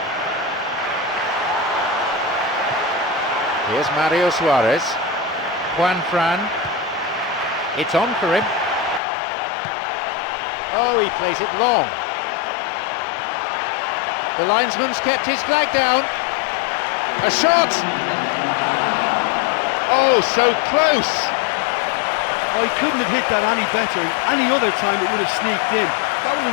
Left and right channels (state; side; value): drops out; right; at 9.0 s